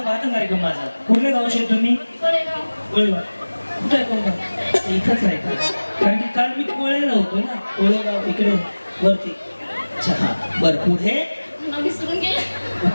पाहता कार्यक्रम माझा कुठल्या गावचे तुम्ही कोळेगाव कुठे आहे कोणता इथंच आहे का कारण की काल मी कोळेला होतो ना कोळेगाव इकडे वरती अच्छा हा बरं पुढे विसरून गेला.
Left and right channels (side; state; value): both; inverted; correlation -1.00